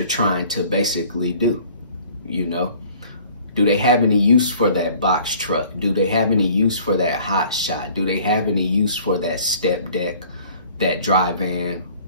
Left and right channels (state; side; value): inverted; both; correlation -0.53